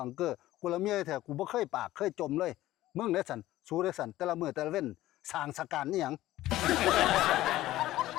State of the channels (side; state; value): right; quieter; 15.4 dB